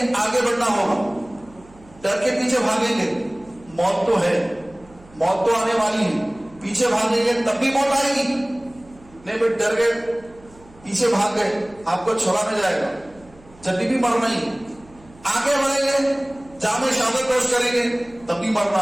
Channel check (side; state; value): right; noise; hum, 25 dB below the sound